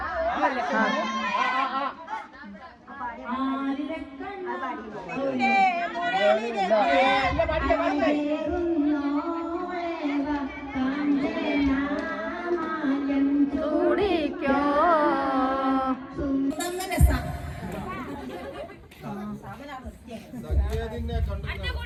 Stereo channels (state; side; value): identical; both; correlation 1.00